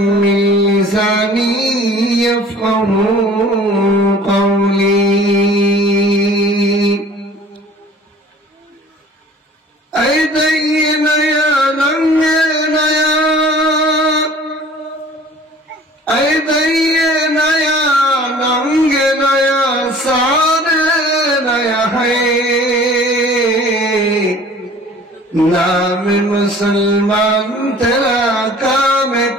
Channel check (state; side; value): normal; both; correlation 0.48